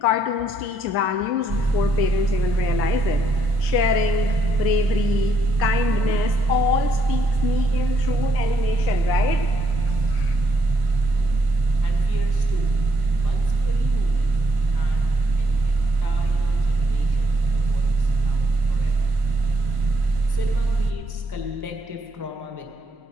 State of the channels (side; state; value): left; late; 1.4 ms